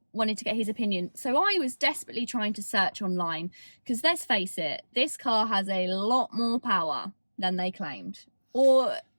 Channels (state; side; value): inverted; both; correlation -1.00